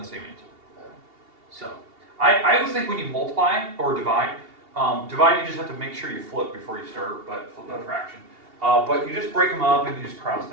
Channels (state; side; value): late; left; 2.8 ms